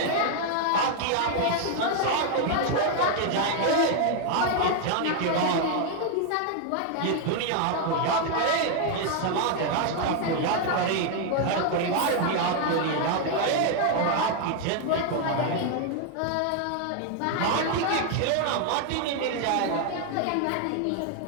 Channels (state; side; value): different; both; correlation 0.00